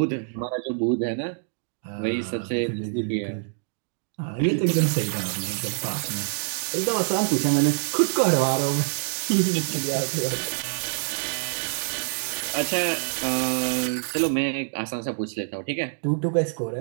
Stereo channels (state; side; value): silent; left; digital silence